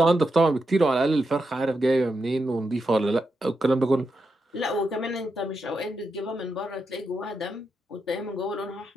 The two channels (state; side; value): normal; both; correlation 0.85